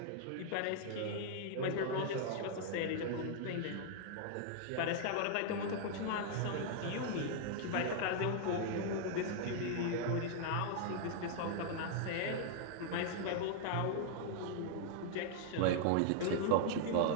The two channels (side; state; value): both; different; correlation -0.01